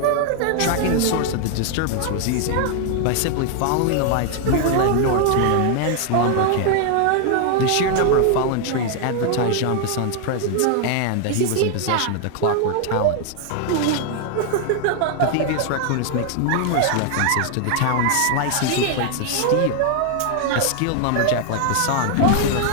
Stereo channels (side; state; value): both; different; correlation 0.00